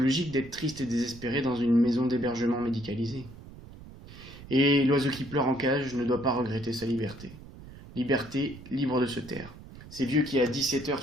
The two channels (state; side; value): noise; right; rumble, 17 dB below the sound